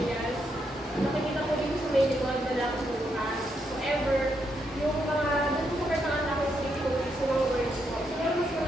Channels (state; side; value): normal; both; correlation 0.79